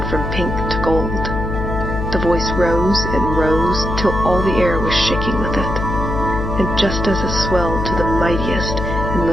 from pink to gold. The voice rose and rose till all the air was shaking with it. And just as it swelled to the mightiest and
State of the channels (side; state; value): left; noise; hum, 3 dB below the sound